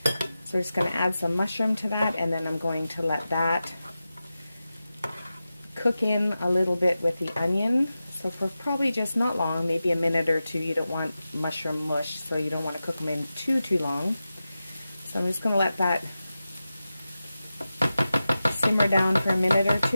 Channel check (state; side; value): inverted; both; correlation -0.93